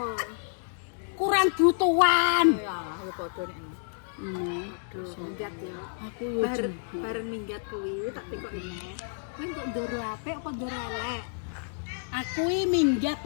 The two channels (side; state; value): right; silent; digital silence